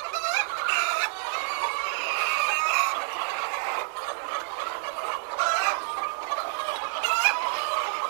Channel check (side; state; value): left; silent; digital silence